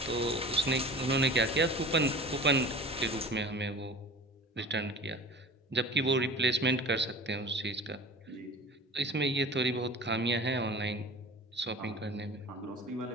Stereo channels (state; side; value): normal; both; correlation 0.39